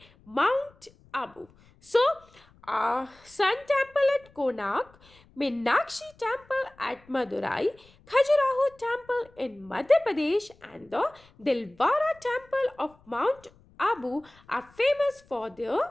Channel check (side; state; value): left; noise; rumble, 29 dB below the sound